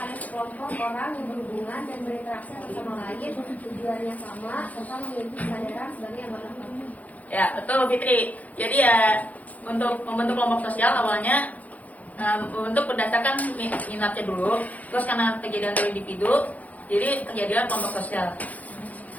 sekelompok orang yang berhubungan dan berinteraksi satu sama lain, tujuannya sama, serta memiliki kesadaran sebagai anggota kelompok. Ya, betul Fitri. Jadi ya, untuk membentuk kelompok sosial awalnya membentuk berdasarkan minatnya dulu, terus karena kejadian dari individu, jadi terjadilah kelompok sosial.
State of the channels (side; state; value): right; late; 0.075 ms